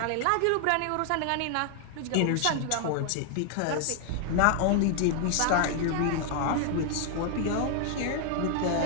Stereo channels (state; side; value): different; both; correlation 0.00